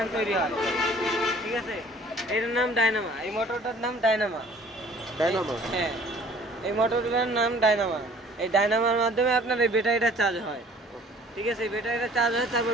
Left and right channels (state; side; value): normal; both; correlation 0.52